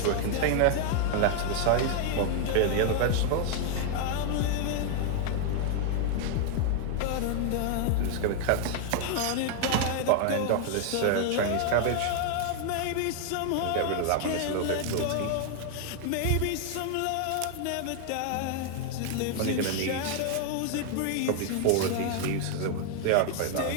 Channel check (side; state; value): both; different; correlation 0.00